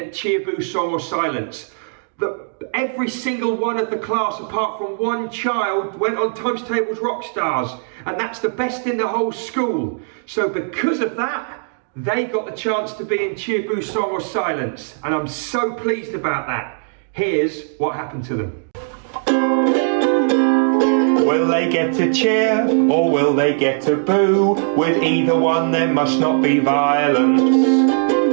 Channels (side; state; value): left; silent; digital silence